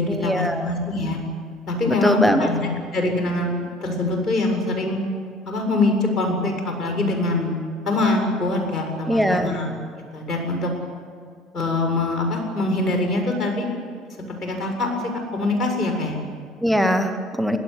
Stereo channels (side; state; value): both; normal; correlation 0.50